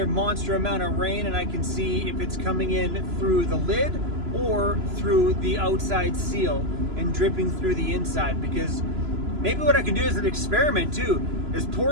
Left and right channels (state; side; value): late; left; 3.0 ms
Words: monster amount of rain and I can see if it's coming in through the lid or through the outside seal and dripping through the inside. Because maybe what I can do as an experiment too is